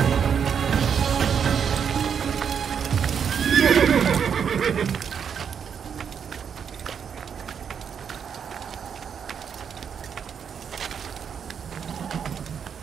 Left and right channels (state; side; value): quieter; left; 7.4 dB